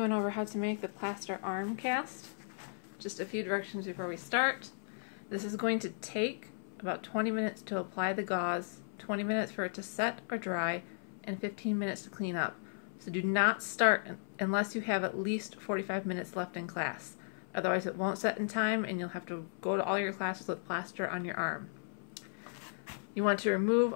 over how to make the plaster arm cast. Just a few directions before we start. This is going to take about 20 minutes to apply the gauze, 20 minutes for it to set or dry, and 15 minutes to clean up. So do not start unless you have at least 45 minutes left in class. Otherwise it won't set in time and you'll have to go to all your classes with plaster on your arm. You want to remove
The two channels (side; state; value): right; silent; 54 dB below the other